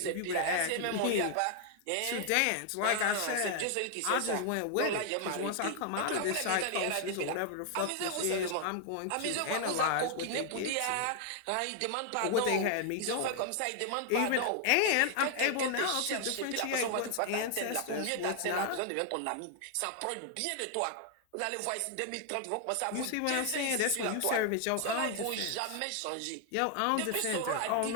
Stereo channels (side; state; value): both; different; correlation 0.00